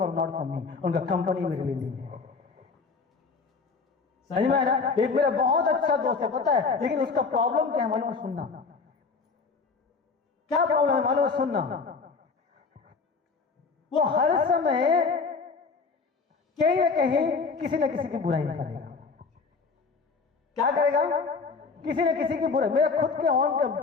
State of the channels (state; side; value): quieter; right; 4.8 dB